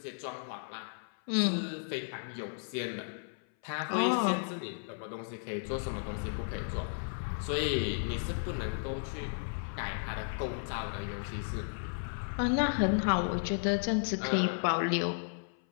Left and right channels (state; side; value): silent; right; 55 dB below the other